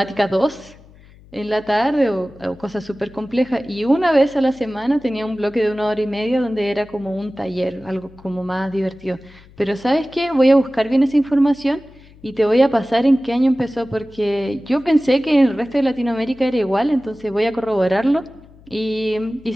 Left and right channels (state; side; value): noise; left; hum, 24 dB below the sound